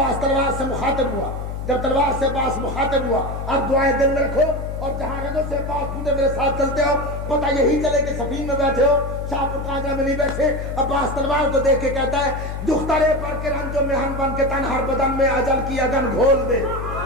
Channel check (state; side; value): noise; left; hum, 6 dB below the sound